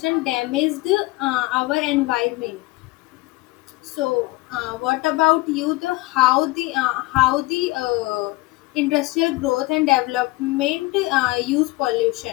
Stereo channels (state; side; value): quieter; right; 21.6 dB